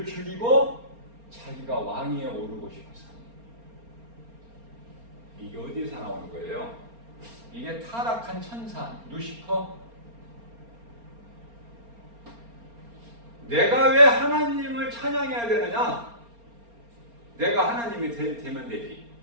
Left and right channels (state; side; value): late; left; 4.3 ms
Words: 죽이고 자기가 왕위에 오르고 싶어서. 이게 어디서 나오는 거예요? 이게 타락한 천사 루시퍼. 내가 왜 하나님을 찬양해야 되느냐? 내가 하나님이 되면 되지.